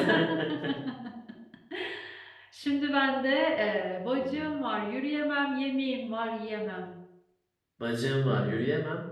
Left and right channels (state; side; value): identical; both; correlation 1.00